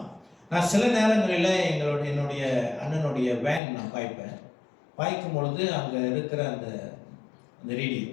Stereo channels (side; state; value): right; drops out; at 3.6 s